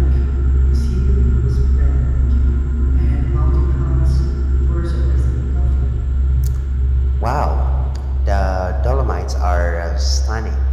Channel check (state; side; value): identical; both; correlation 1.00